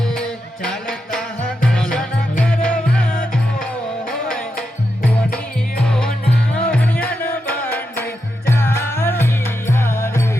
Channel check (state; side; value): normal; both; correlation 0.86